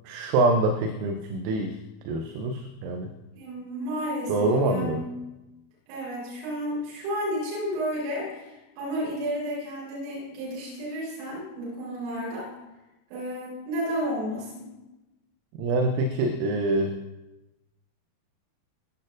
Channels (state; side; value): late; left; 37 ms